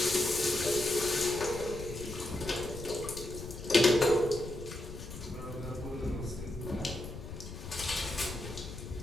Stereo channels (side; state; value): left; noise; rumble, 10 dB below the sound